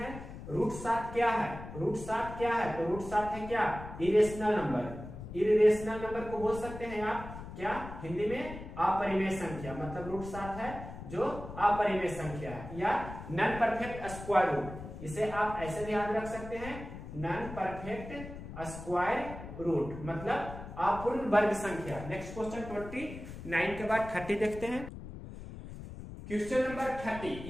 √7 क्या है, √7 क्या है, तो √7 है क्या, इरेशनल नंबर। इरेशनल नंबर को बोल सकते हैं आप क्या, हिंदी में अपरिमेय संख्या। मतलब √7 है जो अपरिमेय संख्या है या नॉन परफेक्ट स्क्वायर रूट। इसे आप ऐसे भी याद रख सकते हैं, नॉन परफेक्ट स्क्वायर रूट मतलब अपूर्ण वर्ग संख्या। नेक्स्ट क्वेश्चन 29 के बाद 30 देखते हैं। क्वेश्चन नंबर 30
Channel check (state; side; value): noise; left; rumble, 11 dB below the sound